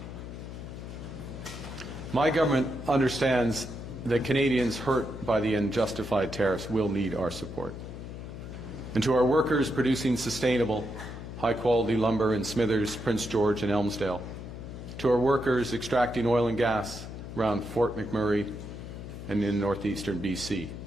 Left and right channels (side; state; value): left; noise; hum, 10 dB below the sound